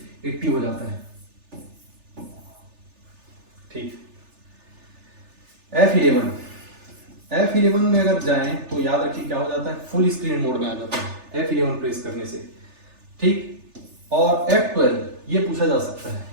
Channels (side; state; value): left; late; 3.4 ms